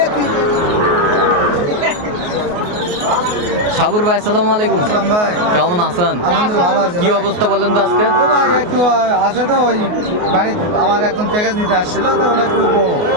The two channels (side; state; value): left; late; 28 ms